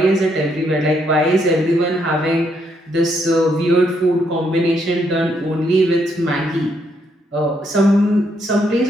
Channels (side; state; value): both; normal; correlation 0.74